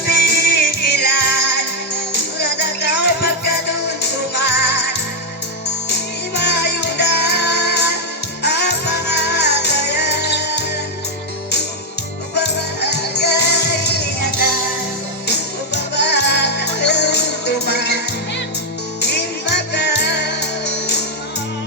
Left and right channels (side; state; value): both; normal; correlation 0.01